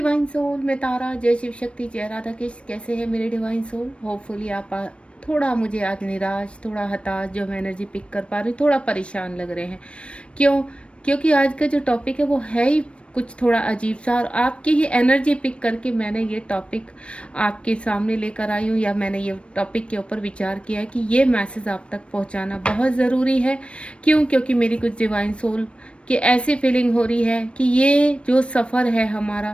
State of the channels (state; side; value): late; right; 0.060 ms